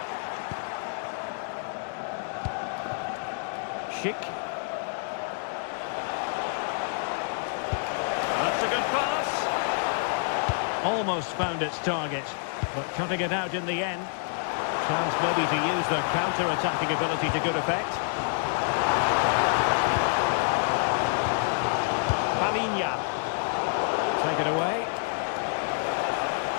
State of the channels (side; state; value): right; silent; digital silence